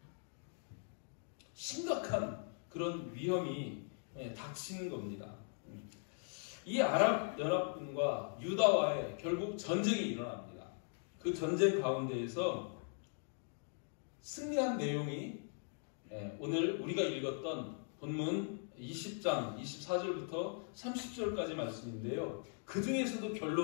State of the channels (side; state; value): right; silent; 51 dB below the other